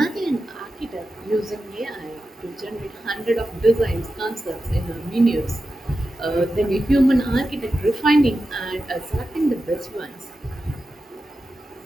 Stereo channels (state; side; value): normal; both; correlation 0.91